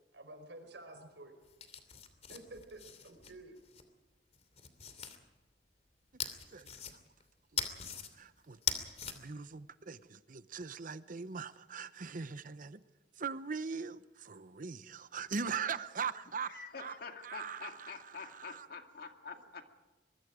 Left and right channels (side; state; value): both; normal; correlation -0.04